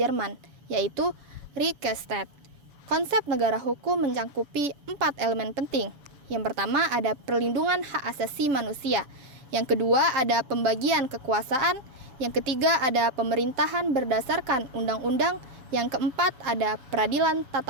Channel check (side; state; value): left; late; 7.0 ms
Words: yaitu Rechtsstaat. Konsep negara hukum mencakupi 4 elemen penting. Yang pertama ada perlindungan hak asasi manusia. Yang kedua ada pembagian kekuasaan. Yang ketiga ada pemerintahan berdasarkan undang-undang. Yang keempat ada peradilan